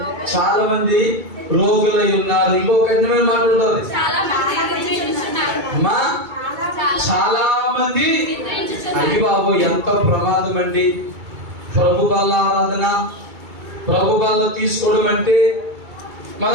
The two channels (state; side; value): late; left; 2.3 ms